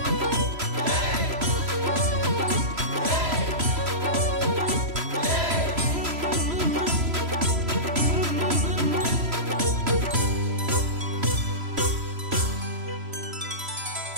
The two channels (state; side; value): late; left; 3.0 ms